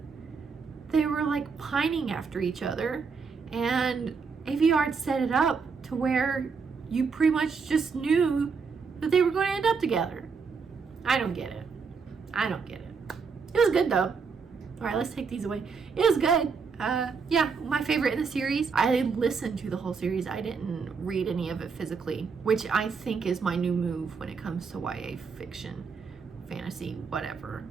they were like pining after each other, and Aveyard set it up to where you pretty much just knew that they were going to end up together. I don't get it. It was good though. All right, let's take these away. It was good. Yeah, my favorite in the series. I listened to the whole series. I didn't read any of it physically, which I think is my new move when it comes to YA fiction, fantasy, whatever.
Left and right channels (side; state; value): left; quieter; 5.3 dB